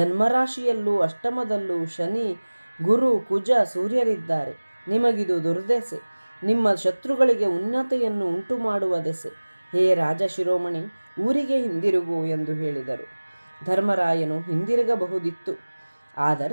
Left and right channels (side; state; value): both; inverted; correlation -1.00